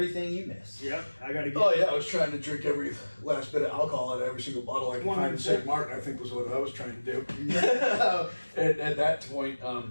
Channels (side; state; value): both; inverted; correlation -1.00